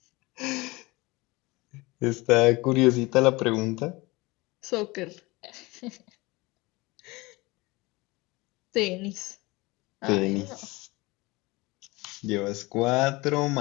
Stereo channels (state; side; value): quieter; right; 22.9 dB